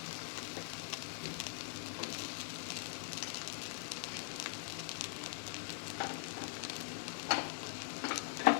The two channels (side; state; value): right; silent; digital silence